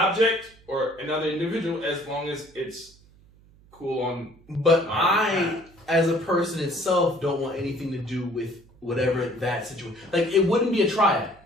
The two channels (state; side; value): noise; right; hum, 27 dB below the sound